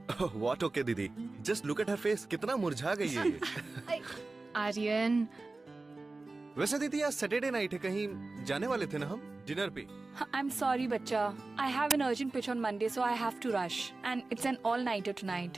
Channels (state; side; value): quieter; left; 3.4 dB